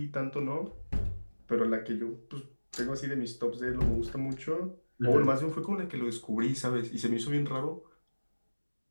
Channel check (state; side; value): inverted; both; correlation -1.00